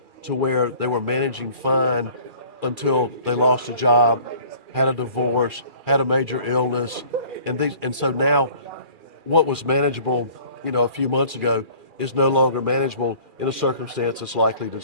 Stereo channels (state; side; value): late; left; 2.4 ms